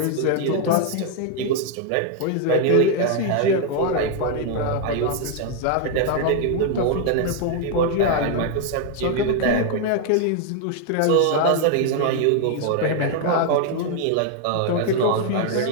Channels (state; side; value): different; both; correlation 0.00